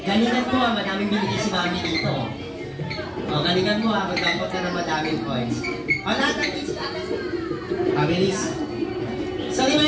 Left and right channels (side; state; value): both; identical; correlation 1.00